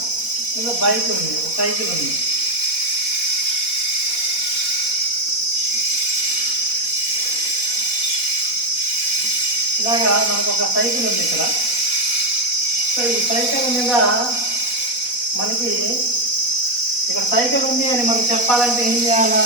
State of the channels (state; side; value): late; right; 4.1 ms